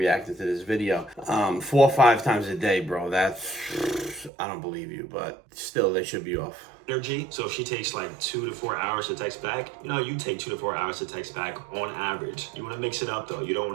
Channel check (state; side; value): drops out; left; at 4.3 s